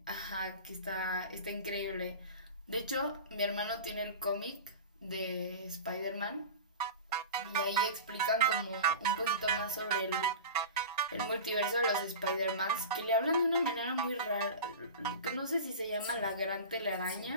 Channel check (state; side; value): inverted; both; correlation -0.31